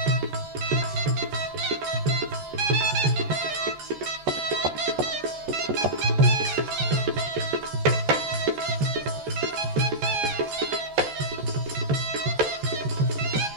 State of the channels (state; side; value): late; left; 14 ms